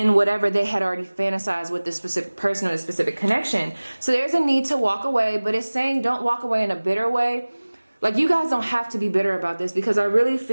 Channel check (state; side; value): inverted; both; correlation -1.00